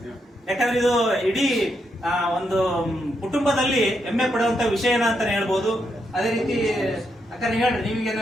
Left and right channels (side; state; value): both; normal; correlation 0.80